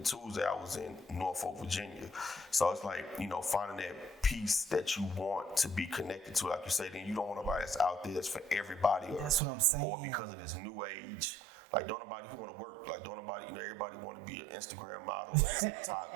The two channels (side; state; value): left; drops out; at 9.4 s